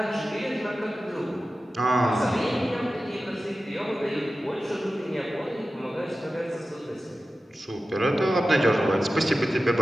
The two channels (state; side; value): normal; both; correlation 0.94